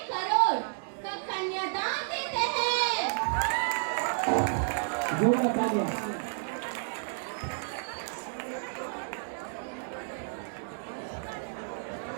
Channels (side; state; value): left; silent; digital silence